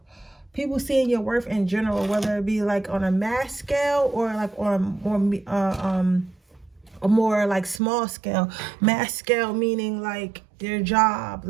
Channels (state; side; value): drops out; left; at 7.8 s